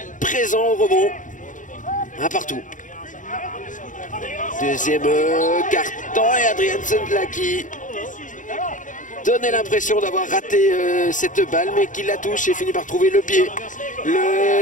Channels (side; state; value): right; late; 0.37 ms